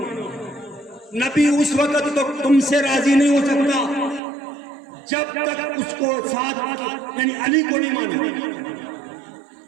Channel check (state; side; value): drops out; left; at 4.2 s